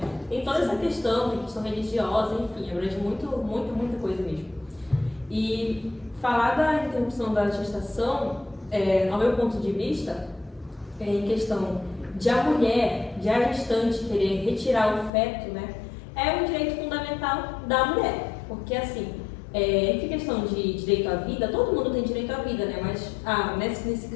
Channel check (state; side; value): drops out; right; at 15.1 s